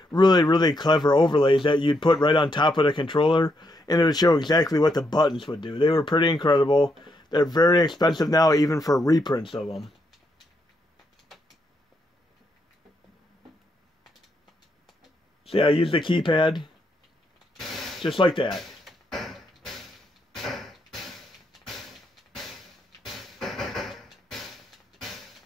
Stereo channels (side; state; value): both; normal; correlation 0.78